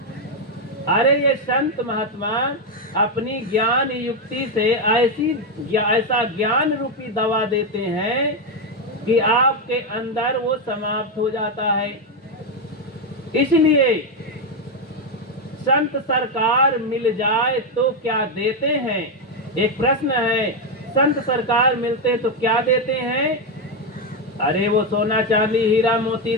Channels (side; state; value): both; normal; correlation 0.05